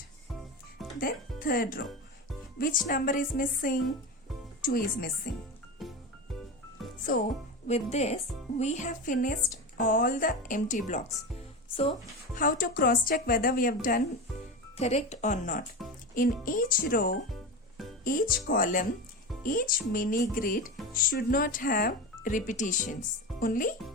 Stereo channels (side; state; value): both; normal; correlation 0.23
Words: Then third row, which number is missing? 2 is missing. So with this, we have finished all the empty blocks. So how to cross check whether we have done correct or not? In each row, each column, each mini grid should not have repetitions. Only